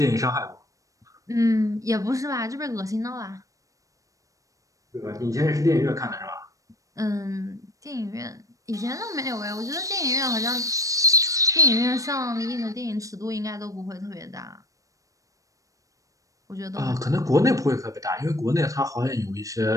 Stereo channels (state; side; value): late; left; 0.16 ms